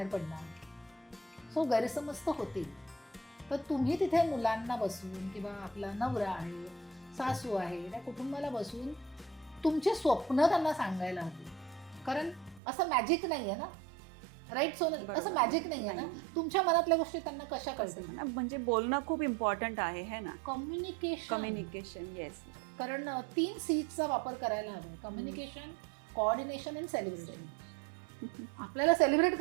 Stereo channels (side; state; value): left; drops out; at 12.6 s